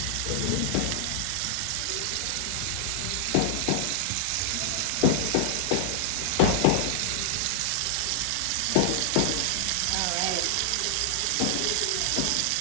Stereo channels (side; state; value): both; different; correlation 0.00